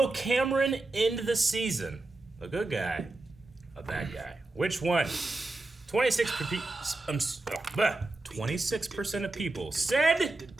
Cameron end the season? A good guy, a bad guy. Which one? 26% of people said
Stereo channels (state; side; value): quieter; left; 3.1 dB